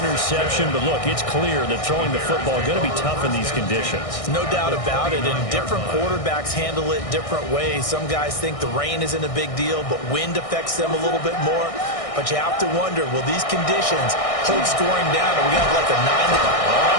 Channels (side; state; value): right; late; 1.6 ms